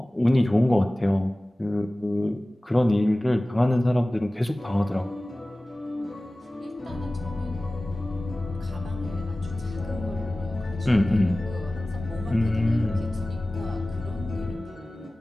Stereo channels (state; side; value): normal; both; correlation 0.97